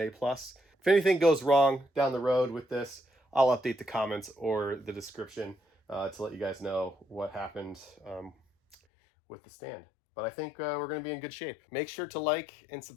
If anything goes wrong down the road with this, I'll update the comments or the description to let you guys know what happened with the stand. But I think we're going to be in good shape. Make sure to like and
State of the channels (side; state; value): right; drops out; at 8.8 s